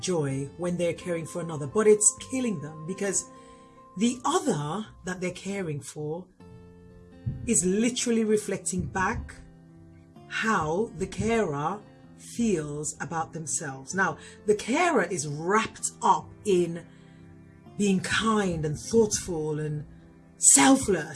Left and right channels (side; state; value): both; identical; correlation 1.00